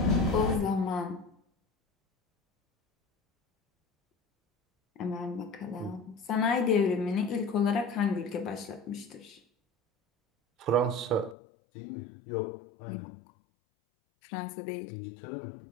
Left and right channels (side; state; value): right; drops out; at 11.4 s